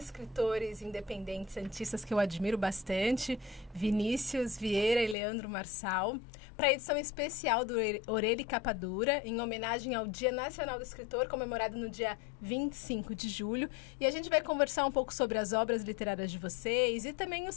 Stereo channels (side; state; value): right; drops out; at 5.2 s